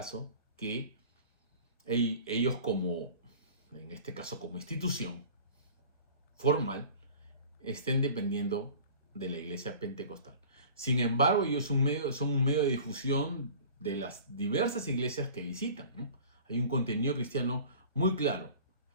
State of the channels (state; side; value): inverted; both; correlation -0.43